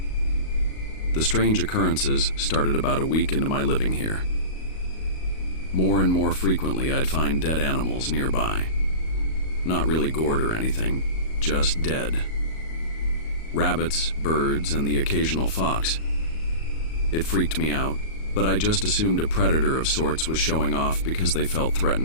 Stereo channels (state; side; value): late; right; 38 ms